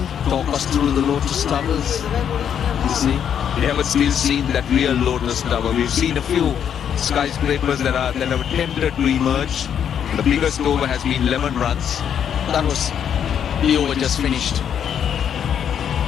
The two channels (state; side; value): quieter; right; 8.6 dB